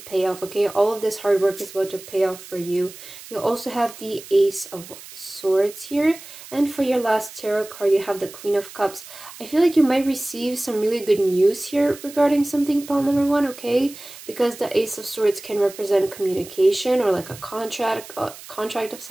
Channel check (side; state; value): right; noise; hiss, 16 dB below the sound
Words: off, okay? All of this hard work is about to pay off for you. You also have the Ace of Swords here, and for your last tarot card, you have the Queen of Cups. I feel like you might receive some really good news here regarding something, pile number 1, okay? Because the Ace of Swords can represent communication or like a contract of